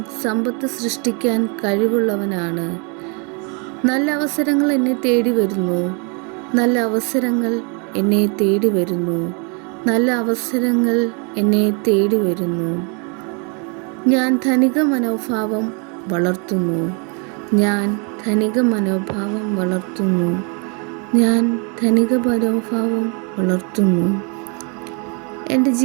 സമ്പത്ത് സൃഷ്ടിക്കാൻ കഴിവുള്ളവനാണ്. നല്ല അവസരങ്ങൾ എന്നെ തേടി വരുന്നു. നല്ല അവസരങ്ങൾ എന്നെ തേടി വരുന്നു. നല്ല അവസരങ്ങൾ എന്നെ തേടി വരുന്നു. ഞാൻ ധനിക മനോഭാവം വളർത്തുന്നു. ഞാൻ ധനിക മനോഭാവം വളർത്തുന്നു. ഞാൻ ധനിക മനോഭാവം വളർത്തുന്നു. എൻ്റെ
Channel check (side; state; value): left; quieter; 35.8 dB